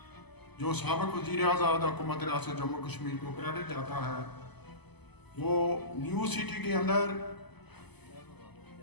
जो साबिक़ वज़ीर आज़ाद हुकूमत रियासत जम्मू कश्मीर को क्रेडिट जाता है वो न्यू सिटी के अंदर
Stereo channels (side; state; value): right; late; 0.99 ms